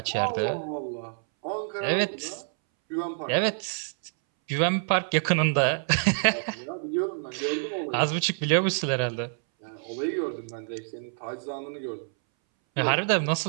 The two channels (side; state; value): left; silent; 60 dB below the other